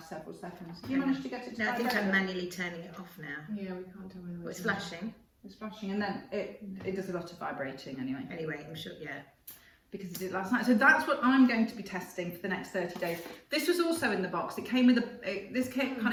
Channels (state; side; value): identical; both; correlation 1.00